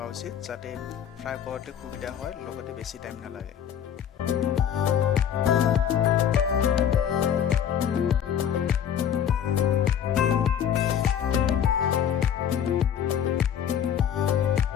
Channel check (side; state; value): right; quieter; 8.8 dB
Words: উচিত যাতে ফ্ৰাই কৰোঁতে সুবিধা হয় লগতে বেছি টাইম নালাগে